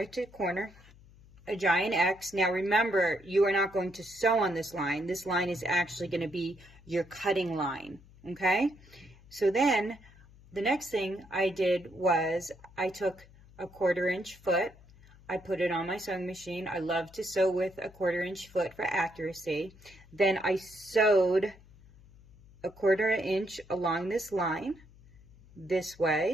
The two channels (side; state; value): left; noise; hum, 24 dB below the sound